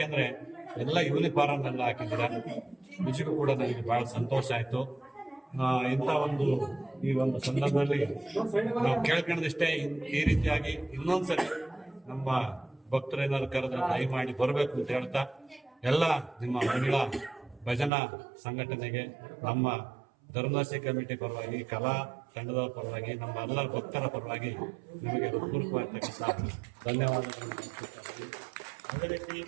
ಎಲ್ಲ ಯೂನಿಫಾರ್ಮ್ ಎಲ್ಲ ಹಾಕಿದ್ದಾರೆ. ನಿಜಕ್ಕೂ ಕೂಡ ನನಗೆ ಬಹಳ ಸಂತೋಷ ಆಯ್ತು. ಇಂಥ ಒಂದು ಈ ಒಂದು ಸಂದರ್ಭದಲ್ಲಿ ನಾವು ಕೇಳ್ಕೊಂಡದಿಷ್ಟೇ, ಈ ರೀತಿಯಾಗಿ ಇನ್ನೊಂದ್ಸರಿ ನಮ್ಮ ಭಕ್ತರೇನಾದ್ರು ಕರೆದ್ರೆ ದಯಮಾಡಿ ಬರಬೇಕು ಅಂತ ಹೇಳ್ತಾ, ಎಲ್ಲ ನಿಮ್ಮ ಮಹಿಳಾ ಭಜನಾ ಸಂಘಟನೆಗೆ ನಮ್ಮ ಧರ್ಮದರ್ಶಿ ಕಮಿಟಿ ಪರವಾಗಿ, ಕಲಾ ತಂಡದವರ ಪರವಾಗಿ, ನಮ್ಮ ಎಲ್ಲ ಭಕ್ತರ ಪರವಾಗಿ ನಿಮಗೆ ಹೃತ್ಪೂರ್ವಕವಾಗಿರ್ತಕ್ಕಂಥ ಧನ್ಯವಾದಗಳನ್ನು. ಅದೇ ರೀತಿ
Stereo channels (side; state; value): left; drops out; at 17.9 s